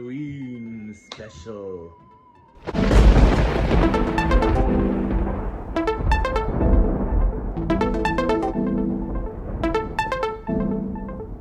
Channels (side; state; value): both; identical; correlation 1.00